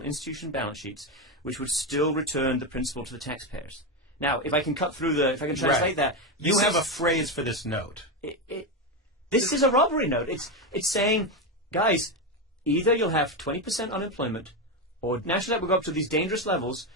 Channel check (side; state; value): both; normal; correlation 0.11